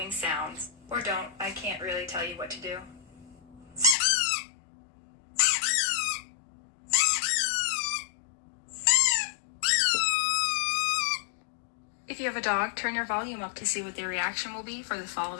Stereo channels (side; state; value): right; drops out; at 4.0 s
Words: sounds. Or don't, I can't really tell you what to do. If you have a dog, turn your volume up to see what their reaction will be for the